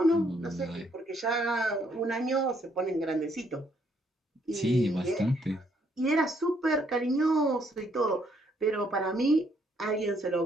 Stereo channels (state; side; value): normal; both; correlation 0.70